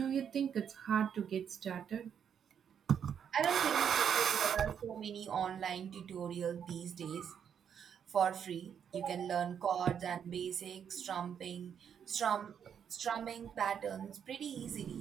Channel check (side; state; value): left; quieter; 8.1 dB